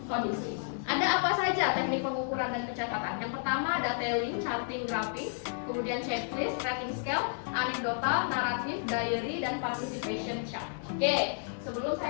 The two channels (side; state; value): right; silent; digital silence